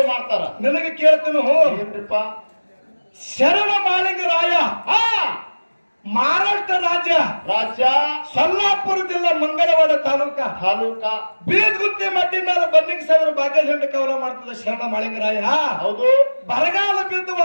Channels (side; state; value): both; inverted; correlation -1.00